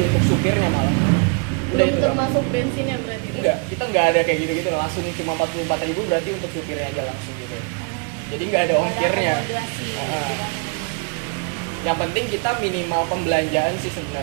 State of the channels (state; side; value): quieter; left; 35.5 dB